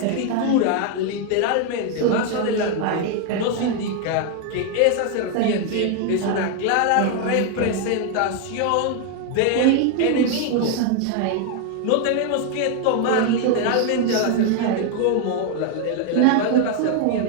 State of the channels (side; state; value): both; different; correlation 0.01